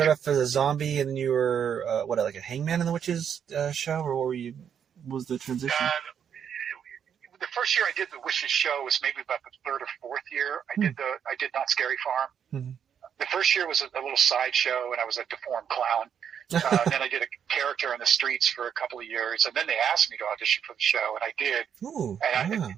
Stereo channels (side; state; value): left; quieter; 8.1 dB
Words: off as a zombie and then you were, like a hangman in the Witches show? Or what were you, was the transition? The first year I did the Wishes show was maybe about the third or fourth year. I did Not Scary Farm. The first year was a little sideshow, and I was a deformed clown. Then I did a character on the streets for a couple of years, and then they asked me to audition for the show, and I did.